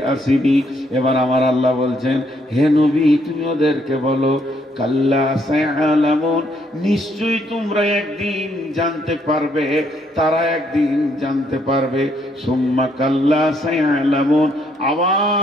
আসিনি। এবার আমার আল্লাহ বলছেন, হে নবী তুমি ওদেরকে বলো, কাল্লা সায়ালামুন, নিশ্চয়ই তোমরা একদিন জানতে পারবে, তারা একদিন জানতে পারবে। সুম্মা কাল্লা সায়ালামুন,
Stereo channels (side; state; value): both; normal; correlation 0.71